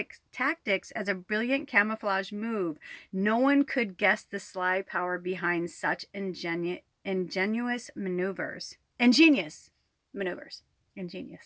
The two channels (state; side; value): identical; both; correlation 1.00